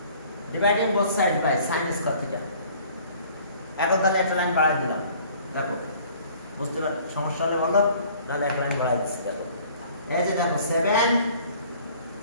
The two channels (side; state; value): both; inverted; correlation -0.53